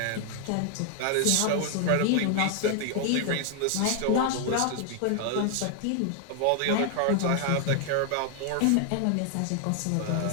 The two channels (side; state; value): both; different; correlation 0.00